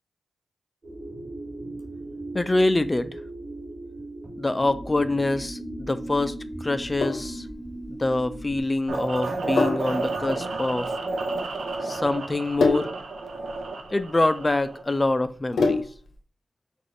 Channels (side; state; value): both; normal; correlation 0.95